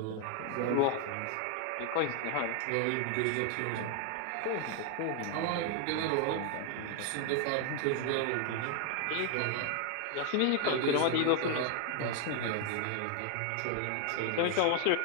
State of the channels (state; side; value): different; both; correlation 0.00